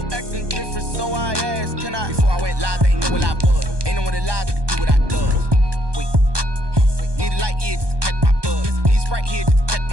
acting different, so I ask, can I? Before I went live, they ain't know what I was. Ain't no one alive that could do what I does. Wait, need a light here just to catch my buzz. Need Sprite here just to catch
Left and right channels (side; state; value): left; late; 1.2 ms